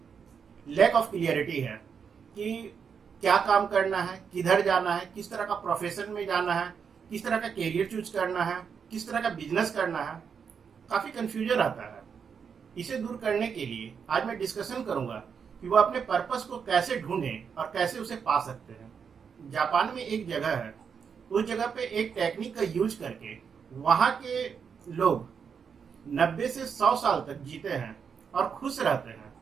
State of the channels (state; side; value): quieter; left; 6.6 dB